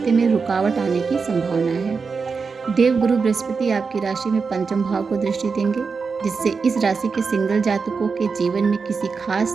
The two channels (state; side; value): quieter; left; 5.0 dB